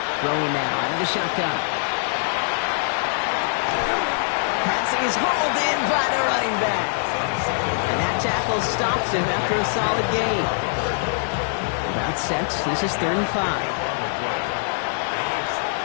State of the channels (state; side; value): silent; right; digital silence